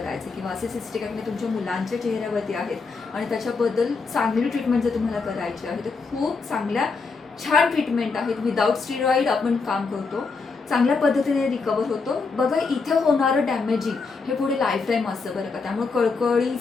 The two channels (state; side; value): quieter; right; 4.5 dB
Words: किंवा असे सिस्टिक ॲक्ने तुमच्या मुलांच्या चेहऱ्यावरती आहेत आणि त्याच्याबद्दल चांगली ट्रीटमेंट जर तुम्हाला करायची आहे, तर खूप चांगल्या छान ट्रीटमेंट आहेत. विदाऊट स्टिरॉइड आपण काम करतो, चांगल्या पद्धतीने रिकवर होतो. बघा, इथं होणारं डॅमेजिंग हे पुढे लाईफ टाईम असतं बरं का. त्यामुळे